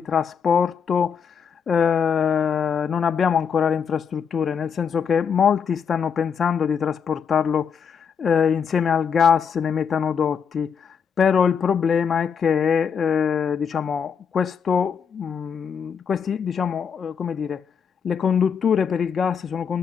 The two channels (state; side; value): quieter; right; 6.8 dB